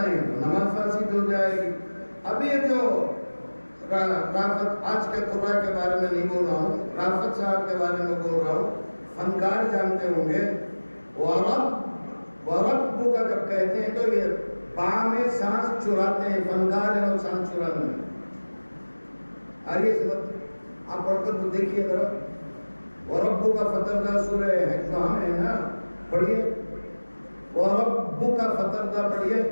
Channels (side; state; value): both; inverted; correlation -1.00